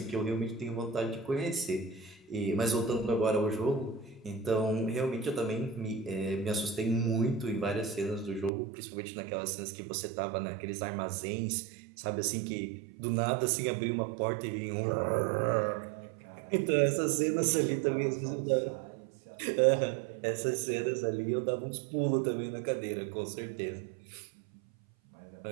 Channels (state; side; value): drops out; left; at 8.5 s